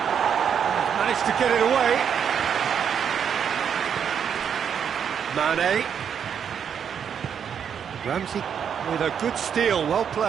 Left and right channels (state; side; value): quieter; left; 7.8 dB